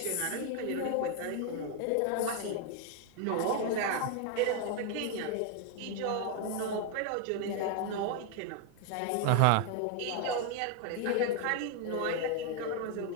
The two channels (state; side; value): different; both; correlation 0.01